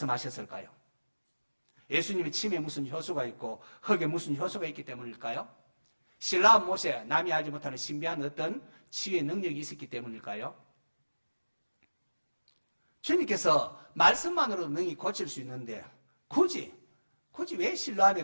예수님의 침에 무슨 효소가 있고 흙에 무슨 효소가 있기 때문일까요? 실라암 못에 남이 알지 못하는 신비한 어떤 치유의 능력이 있었기 때문일까요? 주님께서 말씀만으로도 능히 고칠 수 있는데 굳이 왜 실로암에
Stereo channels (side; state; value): both; inverted; correlation -1.00